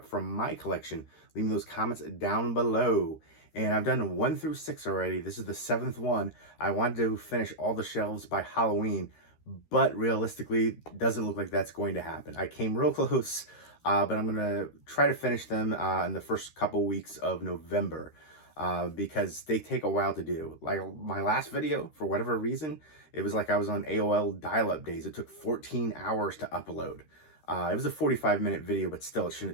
from my collection. Leave me those comments down below. And I've done 1 through 6 already. This is the 7th one. I wanted to finish all the shelves by Halloween, but realistically, doesn't look like that's going to happen. I came real close, but I'm going to try to finish them in the first couple weeks of November because they take a while to do. Like my last video, for whatever reason, it was like I was on AOL dial-up days. It took 14 hours to upload. It was a 45-minute video, but still, it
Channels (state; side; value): late; right; 13 ms